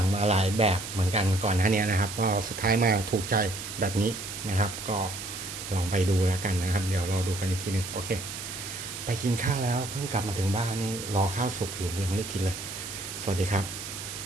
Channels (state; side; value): noise; right; hiss, 8 dB below the sound